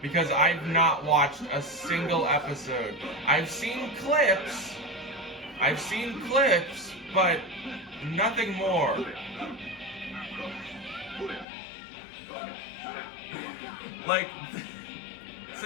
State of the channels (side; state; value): right; drops out; at 11.5 s